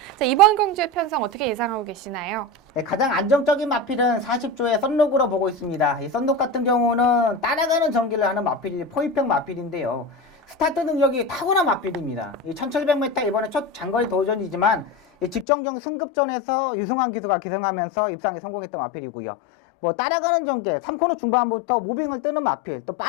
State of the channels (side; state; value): right; drops out; at 15.5 s